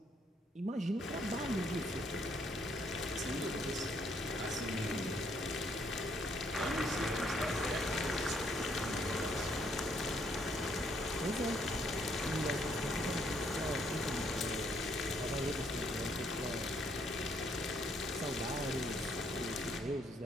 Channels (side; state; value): both; normal; correlation 0.69